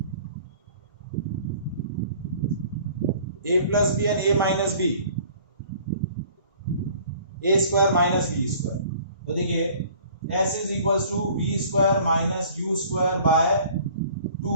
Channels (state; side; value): inverted; both; correlation -0.51